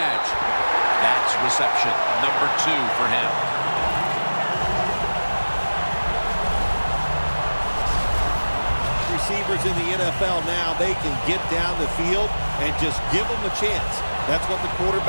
That's reception number 2 for him. Receivers in the NFL now, they can get down the field and just give them a chance. That's what the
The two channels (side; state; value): both; inverted; correlation -1.00